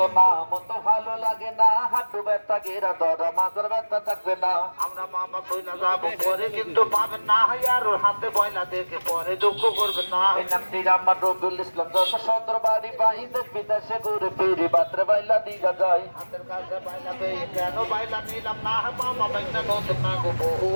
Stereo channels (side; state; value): both; inverted; correlation -1.00